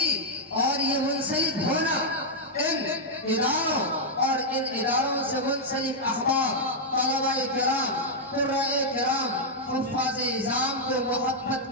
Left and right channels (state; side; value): normal; both; correlation -0.04